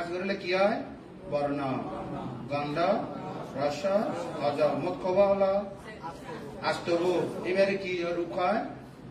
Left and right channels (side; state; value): both; identical; correlation 1.00